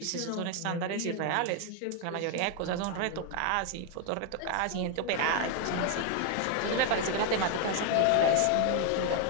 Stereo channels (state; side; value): different; both; correlation 0.00